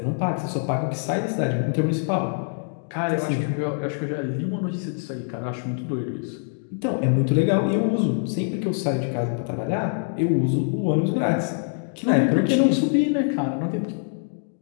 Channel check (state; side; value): silent; right; digital silence